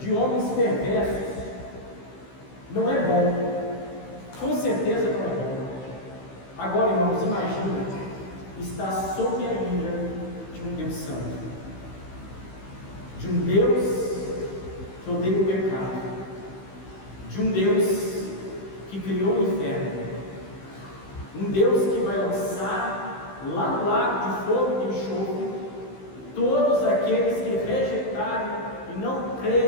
homens perversos. Não é bom, com certeza não é bom. Agora, irmãos, imagina estar sob a ira de um Deus santo, de um Deus que odeia o pecado, de um Deus que criou o inferno, um Deus que vai lançar lá no lago de fogo e de enxofre todos aqueles que rejeitarem e não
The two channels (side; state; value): right; late; 15 ms